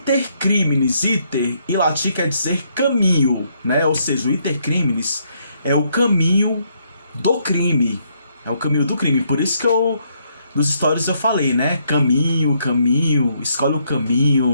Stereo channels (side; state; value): both; inverted; correlation -0.73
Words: iter em latim quer dizer caminho, né? Ou seja, o Intercrimes é o caminho do crime. É o caminho do crime. Por isso que nos stories eu falei, né? Caminho, escolhe o